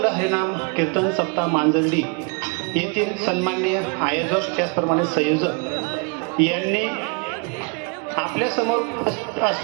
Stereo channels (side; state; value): left; quieter; 33.7 dB